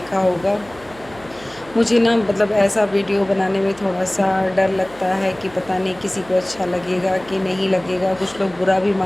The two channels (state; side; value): noise; right; hum, 22 dB below the sound